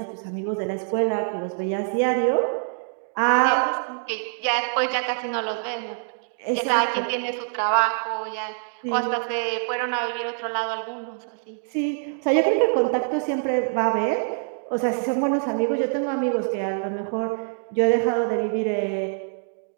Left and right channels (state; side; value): silent; left; digital silence